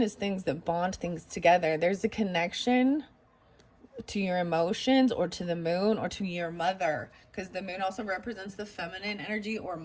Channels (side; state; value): both; identical; correlation 1.00